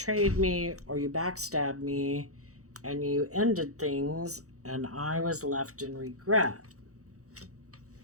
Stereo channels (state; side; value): late; left; 0.65 ms